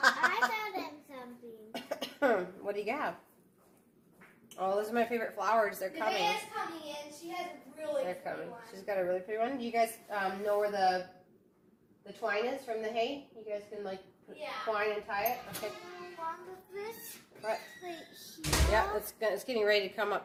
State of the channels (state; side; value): identical; both; correlation 1.00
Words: found something. What do you got? Oh, those are my favorite flowers. They're coming. Nevaeh's coming in. She has a really They're pretty coming. one. She's got a really pretty one. Do you guys know where the twine is from the hay? You guys can like put twine and tie it? Okay. This? What? Right here. Yeah, it's getting ready to come